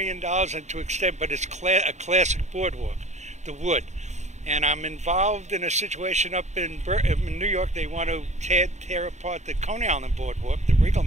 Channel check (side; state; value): left; late; 0.34 ms